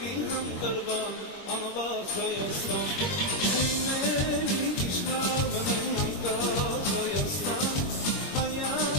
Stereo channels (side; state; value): right; late; 22 ms